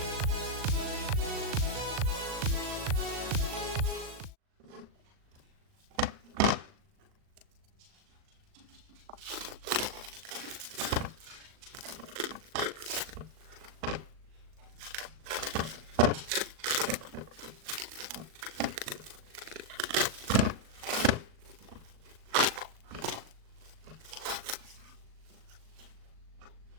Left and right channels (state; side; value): late; left; 38 ms